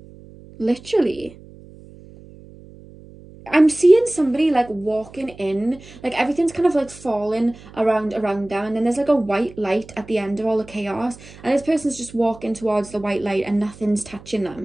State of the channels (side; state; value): right; noise; hum, 20 dB below the sound